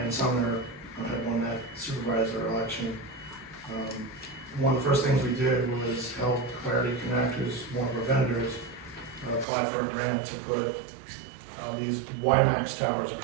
Sumner had won that supervisor election, one of the first things we did was help Clarity Connect, who's one of our vendors, apply for a grant to put these WiMAX towers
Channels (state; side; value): drops out; left; at 9.5 s